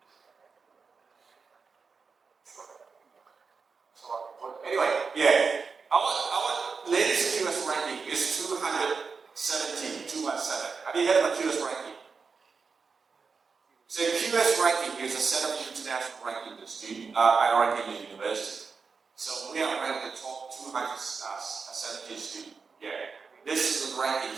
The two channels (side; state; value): left; quieter; 5.0 dB